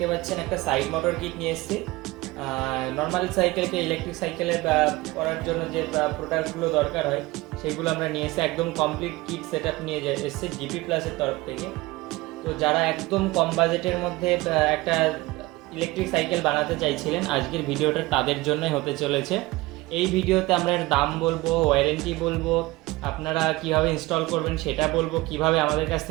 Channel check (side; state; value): left; quieter; 20.5 dB